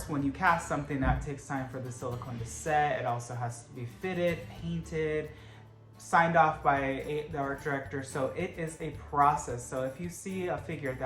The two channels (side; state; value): both; identical; correlation 1.00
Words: when you cast something, that takes time for the silicone to set. It also has to be fitted, painted, signed off by the art director. So it is a process. So if you see a figure